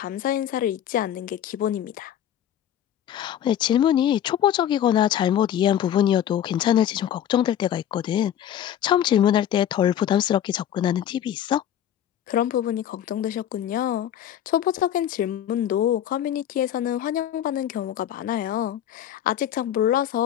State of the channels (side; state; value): right; quieter; 10.6 dB